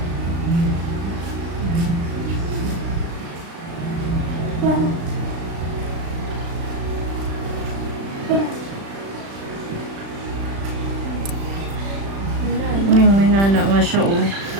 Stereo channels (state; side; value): late; left; 36 ms